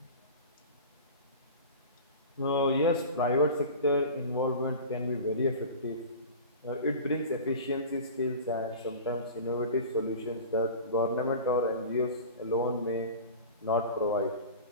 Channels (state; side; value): inverted; both; correlation -0.35